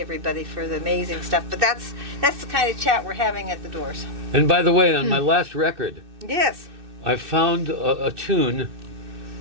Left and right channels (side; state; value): left; late; 2.6 ms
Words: for the amazing stuff. But that's the kind of chat we're having at the doors. And by the way, on my last record, Yes. I found a tune